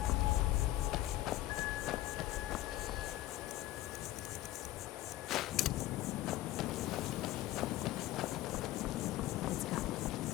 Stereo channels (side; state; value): right; quieter; 15.6 dB